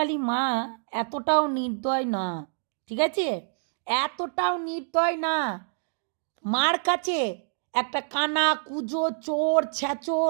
মা এতটাও নির্দয় না, ঠিক আছে? এতটাও নির্দয় না। মার কাছে একটা কানা কুজো চোর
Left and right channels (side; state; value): left; silent; digital silence